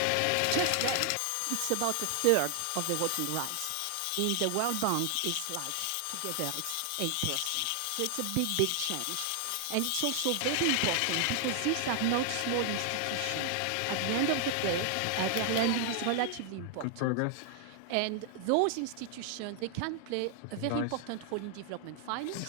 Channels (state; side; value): different; both; correlation 0.00